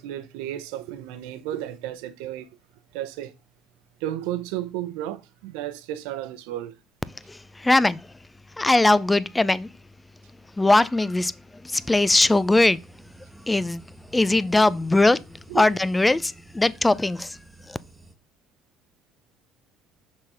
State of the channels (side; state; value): both; normal; correlation 0.94